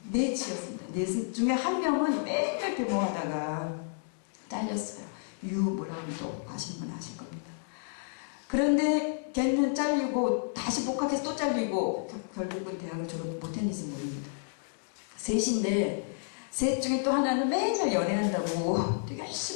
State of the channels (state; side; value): silent; right; digital silence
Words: 넷이었습니다. 넷 중에 한 명은 맨날 데모하다가 잘렸어요. 뭐라고 또 아시는 분 아실 겁니다. 그런데 걔는 잘리고 다시 복학해서 또 잘리고 결국은 대학을 졸업 못했는지 모릅니다. 셋인데 셋 중에 또 하나는 맨날 연애한다고 되게